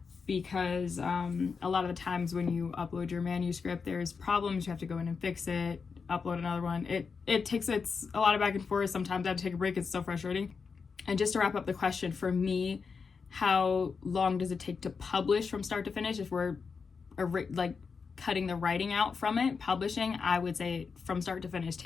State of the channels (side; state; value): right; quieter; 5.3 dB